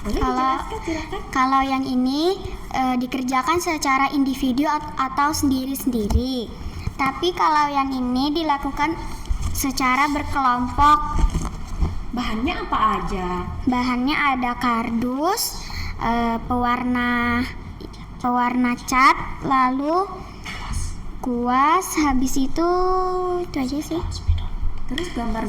Boleh dijelaskan, silakan. Kalau yang ini dikerjakan secara individu atau sendiri-sendiri. Tapi kalau yang ini dilakukan secara berkelompok. Bahannya apa aja? Bahannya ada kardus, pewarna cat, lalu kuas, habis itu aja sih. Terus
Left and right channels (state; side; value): identical; both; correlation 1.00